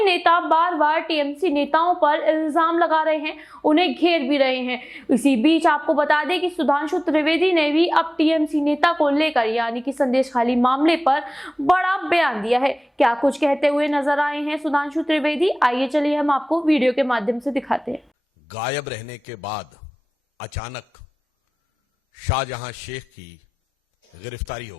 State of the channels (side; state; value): both; normal; correlation 0.98